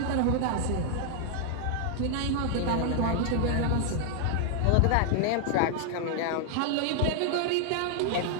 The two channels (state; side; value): different; both; correlation 0.00